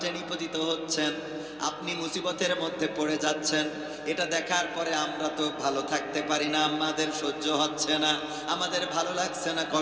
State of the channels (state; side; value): noise; right; hum, 28 dB below the sound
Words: নিপতিত হচ্ছেন, আপনি মুসিবতের মধ্যে পড়ে যাচ্ছেন। এটা দেখার পরে আমরা তো ভালো থাকতে পারি না, আমাদের সহ্য হচ্ছে না, আমাদের ভালো লাগছে না,